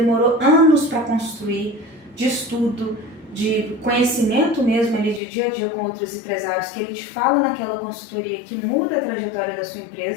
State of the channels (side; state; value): right; drops out; at 5.2 s